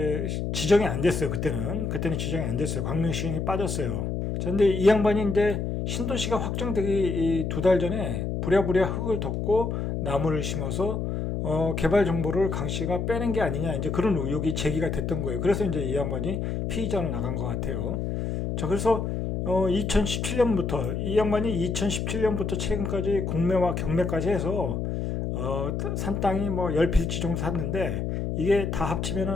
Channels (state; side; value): noise; left; hum, 2 dB below the sound